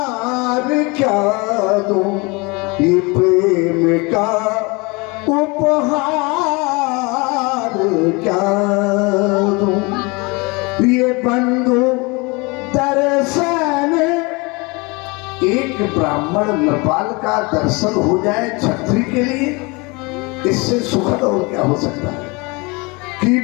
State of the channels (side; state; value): right; quieter; 27.2 dB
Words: क्या दूं, ये प्रेम का उपहार क्या दूं, ये बंधु दर्शन। एक ब्राह्मण नृपाल का दर्शन हो जाए छत्री के लिए, इससे सुखद और क्या हो सकता है। कि